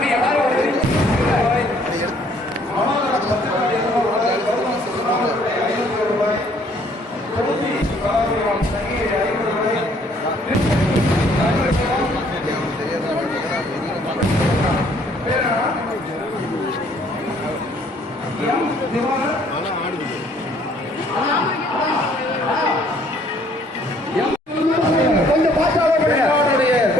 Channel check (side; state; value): both; normal; correlation 0.62